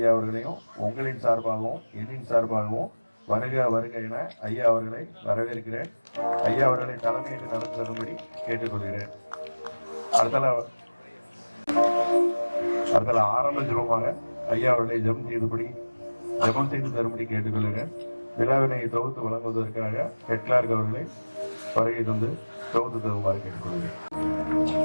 அவர்களையும் உங்களின் சார்பாகவும் என்னின் சார்பாகவும் வருக வருக என ஐயா அவர்களை வரவேற்கிறேன். ஐயா அவர்களை தலைமையேற்று நடந்து தரும்படி கேட்டுக்கொள்கிறேன். அடுத்தல ஆரம்ப ஜபமாக ஐயா அவர்களை ஜெபம் செய்து தரும்படி கேட்டுக்கொள்கிறேன். விழாவினை தொகுத்து வழங்குவதற்காக ஹெட்லார்க் அவர்களை வருகை தந்து தொகுத்து தருமாறு கேட்டுக்கொள்கிறேன்.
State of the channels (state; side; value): inverted; both; correlation -1.00